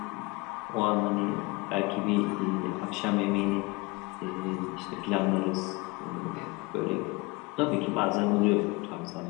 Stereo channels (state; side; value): quieter; right; 25.1 dB